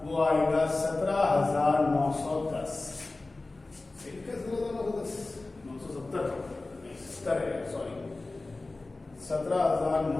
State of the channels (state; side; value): quieter; right; 3.2 dB